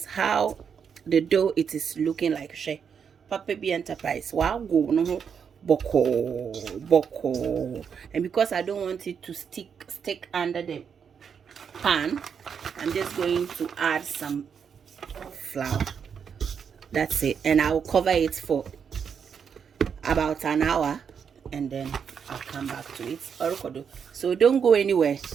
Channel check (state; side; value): quieter; left; 7.0 dB